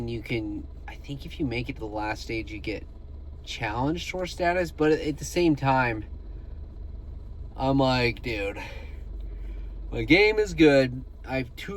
you can, I think if you make it to the last stage, you get Challenge Tour status. But at the same time, I'm dude, my game is good.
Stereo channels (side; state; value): both; identical; correlation 1.00